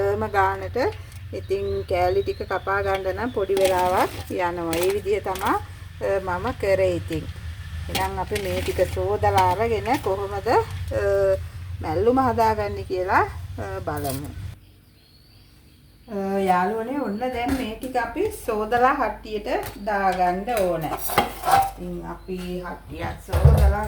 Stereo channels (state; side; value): identical; both; correlation 1.00